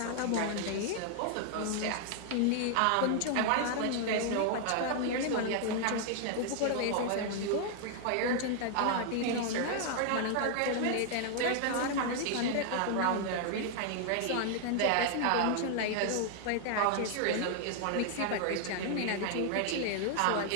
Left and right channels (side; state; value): both; different; correlation 0.00